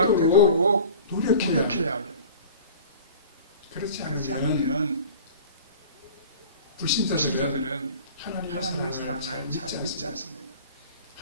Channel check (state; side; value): inverted; both; correlation -0.42